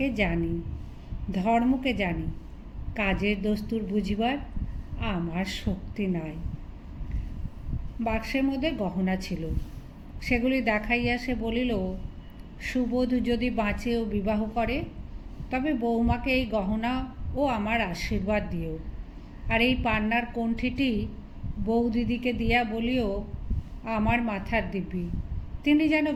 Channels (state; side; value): identical; both; correlation 1.00